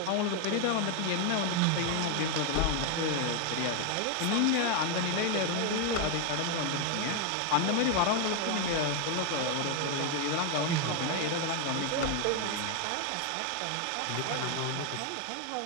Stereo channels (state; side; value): different; both; correlation 0.01